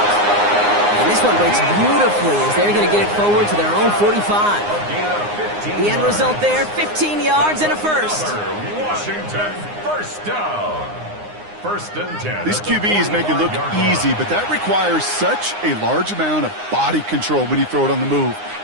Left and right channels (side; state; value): left; late; 9.7 ms